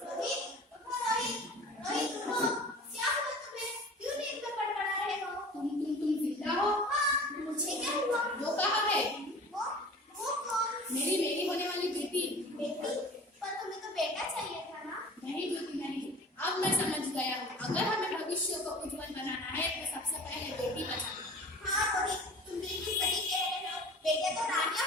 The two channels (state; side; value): normal; both; correlation 0.41